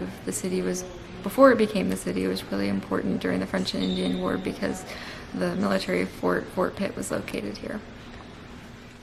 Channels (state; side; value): identical; both; correlation 1.00